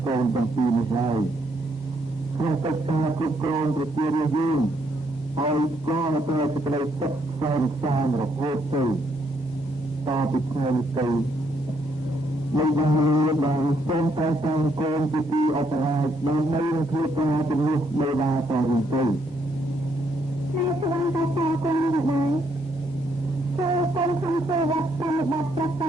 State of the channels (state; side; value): normal; both; correlation 0.73